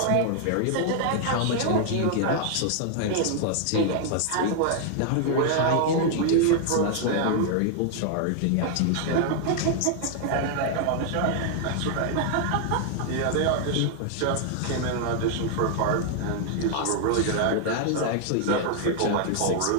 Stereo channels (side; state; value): both; different; correlation 0.00